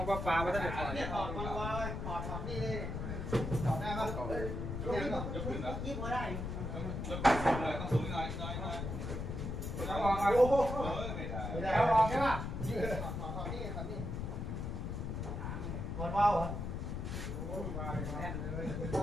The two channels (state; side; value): noise; left; rumble, 4 dB below the sound